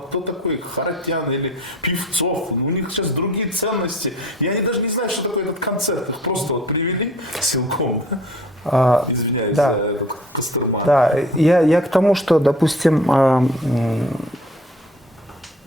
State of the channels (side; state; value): both; normal; correlation 0.47